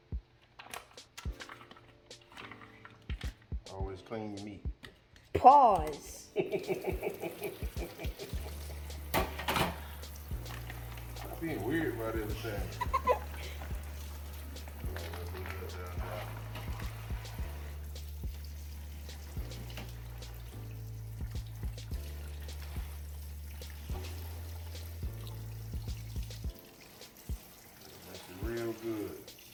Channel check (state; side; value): identical; both; correlation 1.00